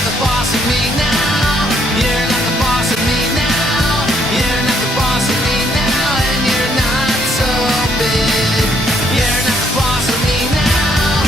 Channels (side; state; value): both; normal; correlation 0.70